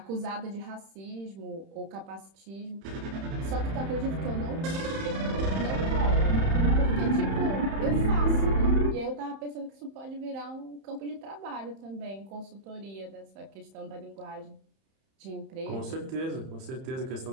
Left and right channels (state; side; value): late; left; 31 ms